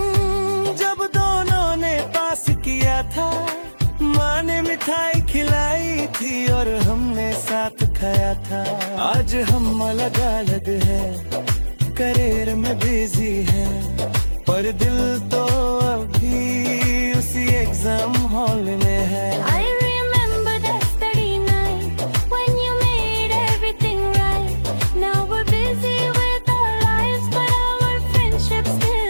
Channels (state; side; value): inverted; both; correlation -1.00